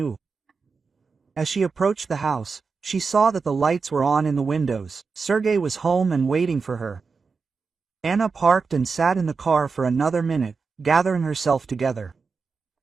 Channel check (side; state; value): left; quieter; 4.9 dB